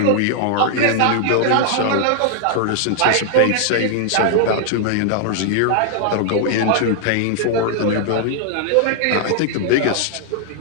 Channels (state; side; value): different; both; correlation 0.00